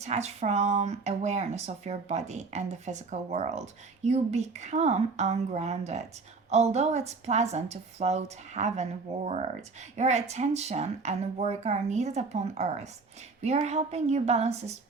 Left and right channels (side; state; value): left; quieter; 4.2 dB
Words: from awareness of your body and the physical world, you become ungrounded. Although it's pleasant to float heavenward, your attention and work are needed upon earth. We are helping you balance the